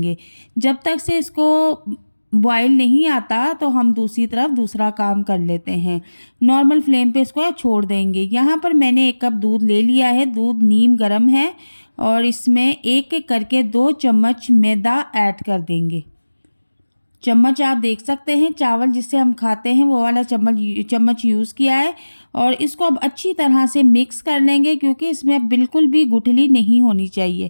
जब तक से इसको बॉयल नहीं आता तो हम दूसरी तरफ दूसरा काम कर लेते हैं। नॉर्मल फ्लेम पे इसको छोड़ देंगे। यहाँ पर मैंने 1 कप दूध ले लिया है। दूध नीम गर्म है और इसमें एक एक करके 2 चम्मच मैदा ऐड कर देंगे। चम्मच आप देख सकते हैं, चावल जिससे हम खाते हैं वो वाला चम्मच यूज़ किया है। और इसको अब अच्छी तरह से मिक्स कर लेंगे, क्योंकि इसमें अब बिल्कुल भी गुठली नहीं होनी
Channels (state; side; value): inverted; both; correlation -1.00